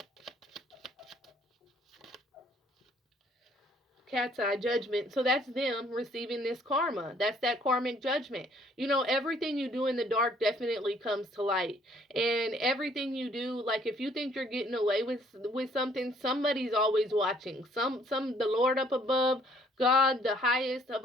Cat's eye judgment. So that's them receiving this karma. That's that karmic judgment. Everything you do in the dark definitely comes to light. And everything you do, like if you think you're getting away with something, somebody's always watching. The Lord up above, God, the highest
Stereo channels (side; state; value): both; normal; correlation 0.62